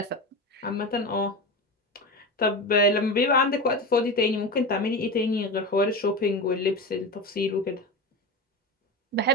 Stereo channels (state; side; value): normal; both; correlation 0.24